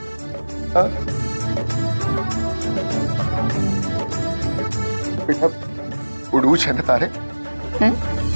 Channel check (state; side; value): inverted; both; correlation -1.00